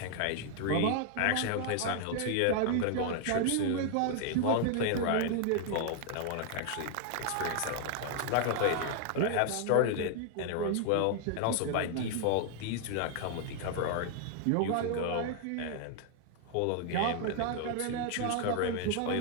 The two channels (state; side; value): different; both; correlation 0.00